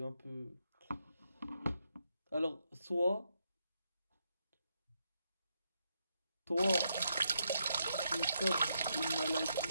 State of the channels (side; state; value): both; inverted; correlation -0.80